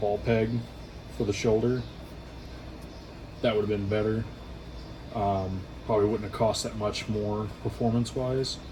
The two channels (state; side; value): identical; both; correlation 1.00